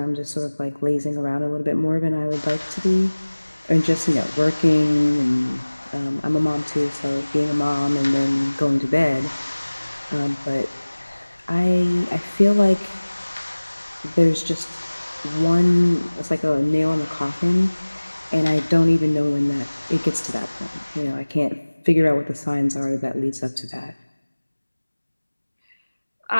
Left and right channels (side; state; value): both; inverted; correlation -1.00